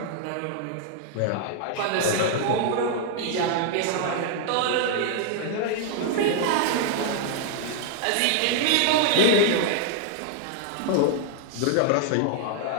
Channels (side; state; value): both; different; correlation 0.00